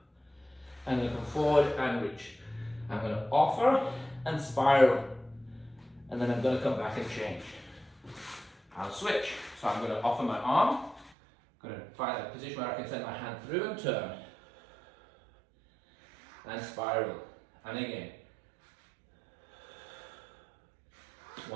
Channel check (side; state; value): left; drops out; at 11.1 s